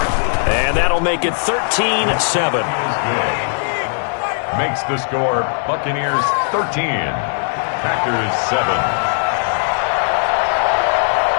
And that'll make it 13-7. Makes the score Buccaneers 13, Packers 7.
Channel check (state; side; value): silent; right; digital silence